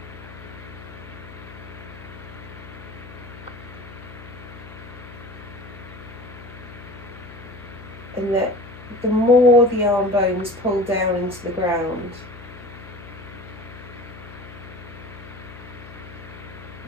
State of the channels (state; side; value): noise; left; hum, 15 dB below the sound